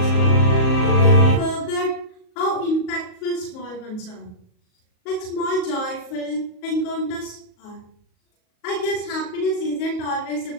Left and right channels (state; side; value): late; right; 38 ms